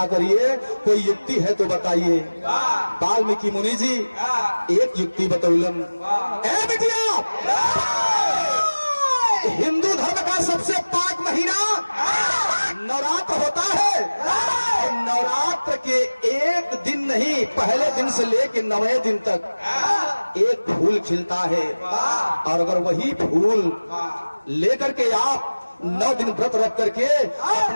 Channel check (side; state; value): both; inverted; correlation -1.00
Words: करिए, कोई युक्ति है तो बताइए। वाल्मीकि मुनि जी एक युक्ति बतौलन। ए बिटिया, हिंदू धर्म का सबसे पाक महीना नवरात्र होता है, और नवरात्र के एक दिन नहीं, पहले दिन से लेकर 9वें दिन तक एक फूल खिलता है, और अगर वही फूल लेकर के आप 9 दिन व्रत रख करके